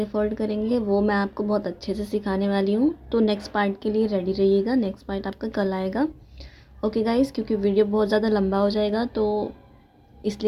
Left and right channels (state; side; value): identical; both; correlation 1.00